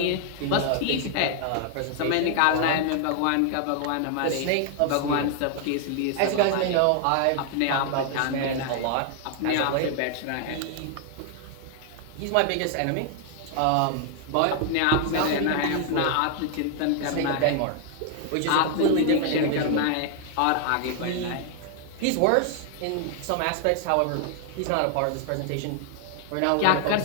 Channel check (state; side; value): different; both; correlation 0.00